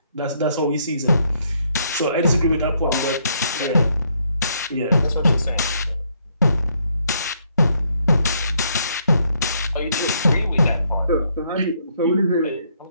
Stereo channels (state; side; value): inverted; both; correlation -0.71